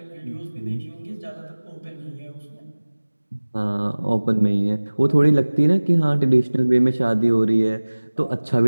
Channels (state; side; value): inverted; both; correlation -1.00